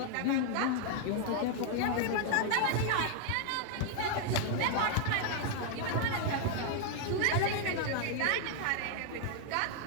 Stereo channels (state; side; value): different; both; correlation 0.00